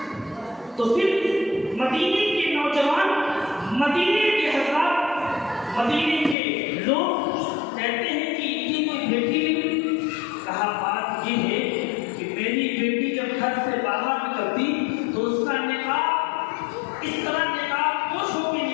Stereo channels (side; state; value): right; drops out; at 6.4 s